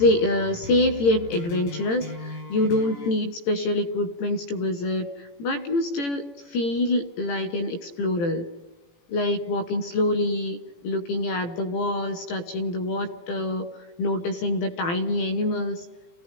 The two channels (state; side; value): late; right; 18 ms